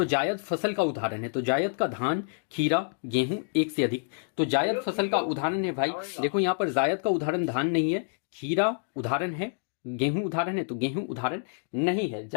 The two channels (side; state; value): right; silent; digital silence